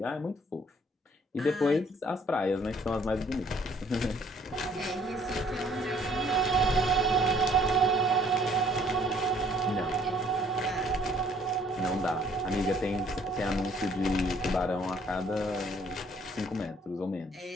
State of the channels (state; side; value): normal; both; correlation 0.61